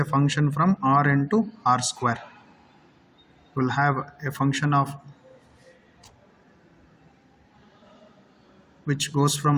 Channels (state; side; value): identical; both; correlation 1.00